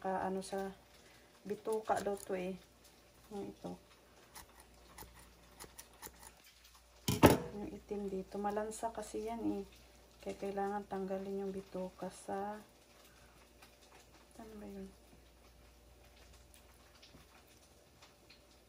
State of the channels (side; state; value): both; identical; correlation 1.00